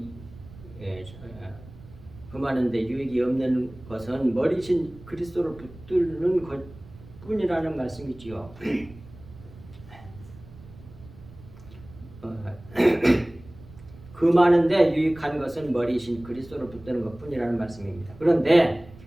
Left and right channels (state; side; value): noise; right; rumble, 19 dB below the sound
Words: 금하는 데 유익이 없는 것은 머리신 그리스도를 붙들는 것 뿐이라는 말씀이지요. 금하는 데 유익한 것은 머리신 그리스도를 붙드는 것 뿐이라는 말씀입니다. 그런데